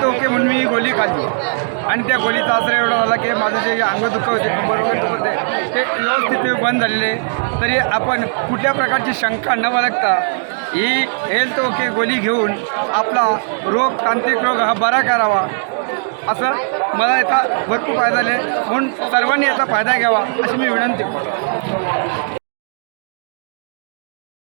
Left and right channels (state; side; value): silent; left; digital silence